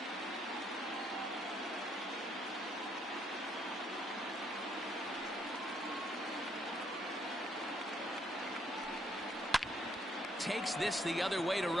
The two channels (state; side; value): normal; both; correlation 0.71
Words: Takes this the other way to